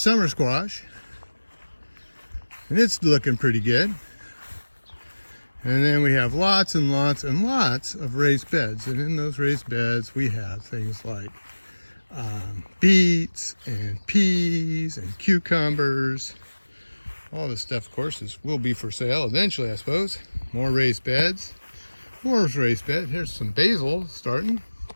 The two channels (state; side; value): inverted; both; correlation -1.00